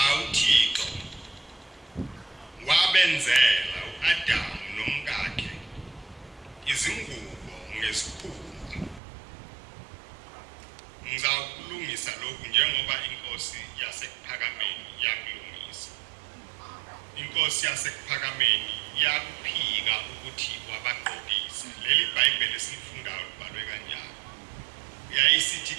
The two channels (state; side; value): drops out; left; at 9.0 s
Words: uThixo wabenzela uAdamu nomkakhe izingubo ngesikhumba. Ngizawukulungisa lokhu njengoba inkosi yasekuphakameni yakulungisa. Inkosi yasekuphakameni yakuphika ukuthi wabaqokisa. Leli iBhayibheli esilifundayo libhalwe kanjalo. Yayisithi